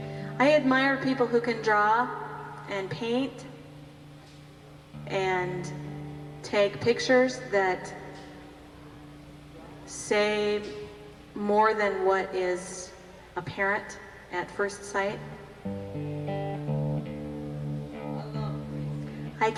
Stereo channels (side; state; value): both; identical; correlation 1.00